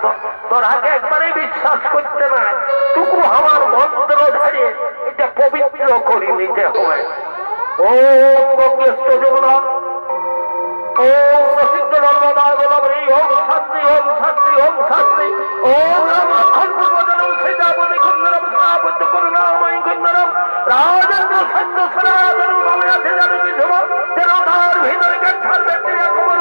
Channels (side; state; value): both; inverted; correlation -1.00